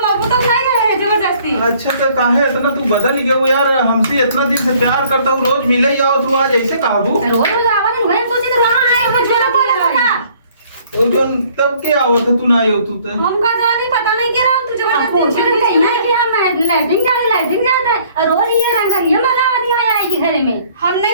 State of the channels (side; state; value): both; inverted; correlation -0.59